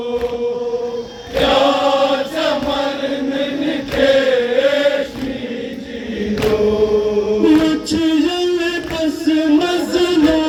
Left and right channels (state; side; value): identical; both; correlation 1.00